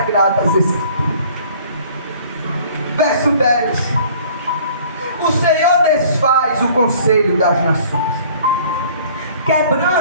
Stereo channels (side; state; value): both; inverted; correlation -0.52